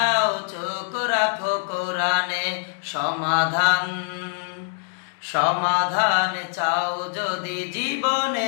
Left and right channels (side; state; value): right; silent; digital silence